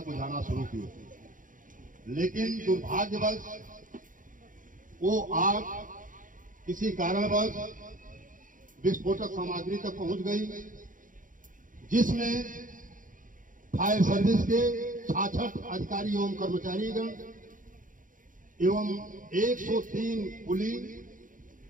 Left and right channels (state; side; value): late; left; 0.39 ms